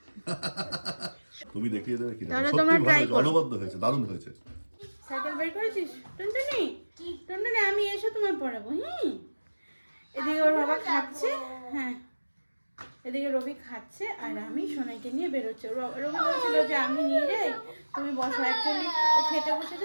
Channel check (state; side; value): inverted; both; correlation -1.00